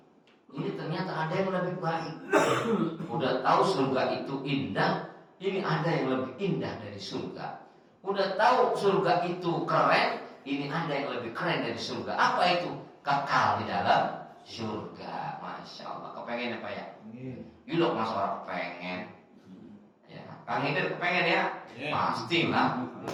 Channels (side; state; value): both; identical; correlation 1.00